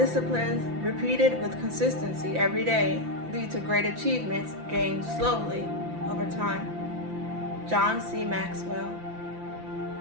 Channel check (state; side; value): late; left; 5.9 ms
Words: repeated with consistency every day lead to great achievements gained slowly over time. John C. Maxwell.